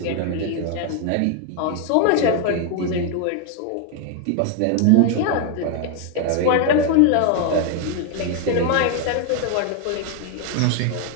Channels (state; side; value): different; both; correlation 0.01